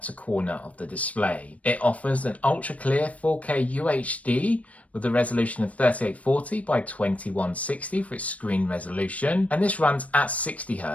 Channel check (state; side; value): late; right; 0.067 ms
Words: to corner of the display. It offers an ultra clear 4K UHD with a resolution of 3840 by 2160 for its screen resolution, and this runs at 60